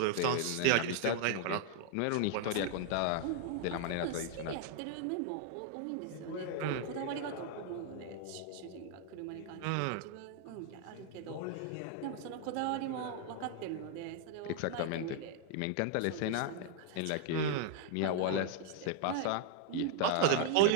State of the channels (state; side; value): different; both; correlation 0.00